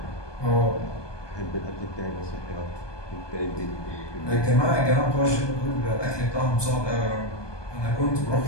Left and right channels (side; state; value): right; late; 1.2 ms